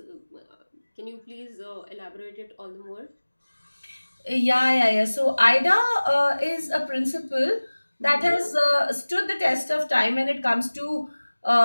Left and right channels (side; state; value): both; inverted; correlation -1.00